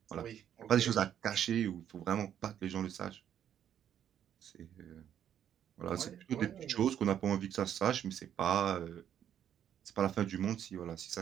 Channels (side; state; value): left; quieter; 9.8 dB